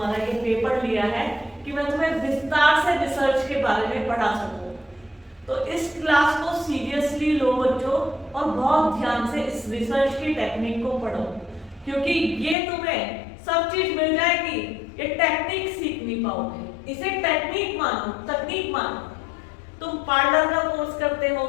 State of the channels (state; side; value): drops out; right; at 12.6 s